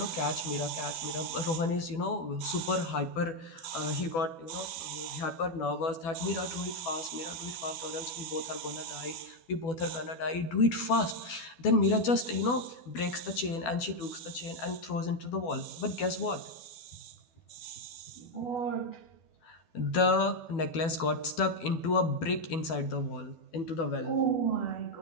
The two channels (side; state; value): right; late; 12 ms